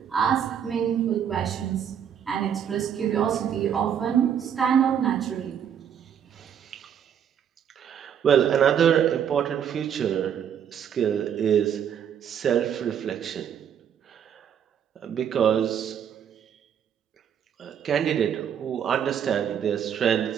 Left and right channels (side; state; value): left; quieter; 8.6 dB